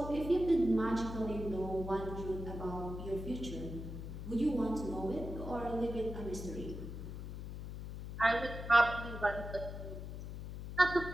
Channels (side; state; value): left; noise; hum, 8 dB below the sound